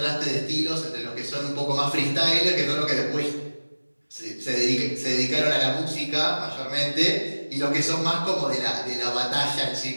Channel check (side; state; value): both; inverted; correlation -1.00